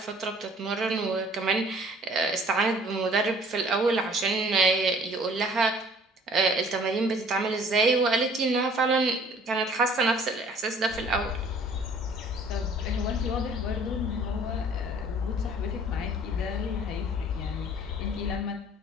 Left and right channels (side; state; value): both; normal; correlation 0.54